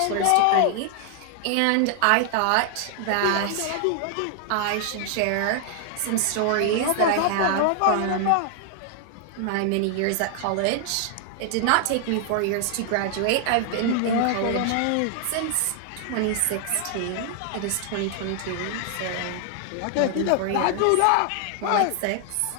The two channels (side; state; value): both; different; correlation 0.00